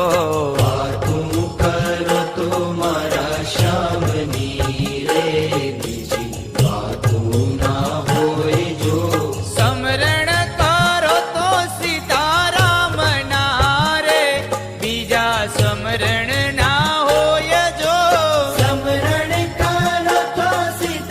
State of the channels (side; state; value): both; identical; correlation 1.00